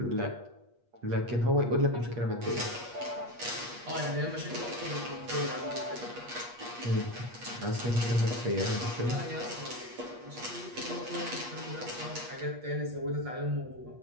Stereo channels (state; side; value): late; left; 8.4 ms